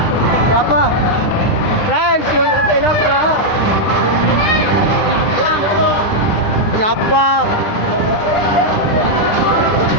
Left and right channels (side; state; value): right; late; 10 ms